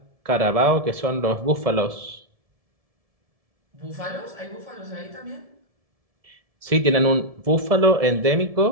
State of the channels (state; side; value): late; left; 1.7 ms